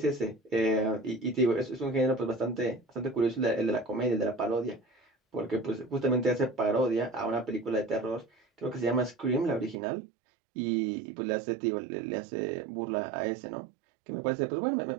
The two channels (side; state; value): left; drops out; at 9.8 s